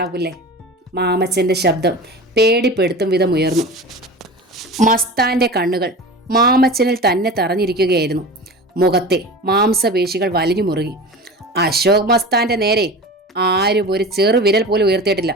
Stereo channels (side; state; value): both; normal; correlation 0.33